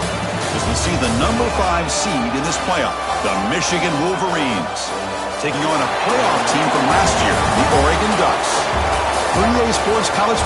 As we see the number 5 seed in this playoff, the Michigan Wolverines, taking on a playoff team from last year, the Oregon Ducks. For EA Sports College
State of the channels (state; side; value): identical; both; correlation 1.00